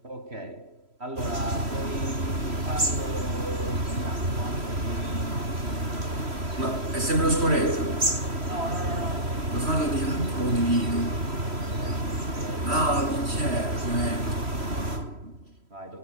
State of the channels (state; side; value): late; left; 3.1 ms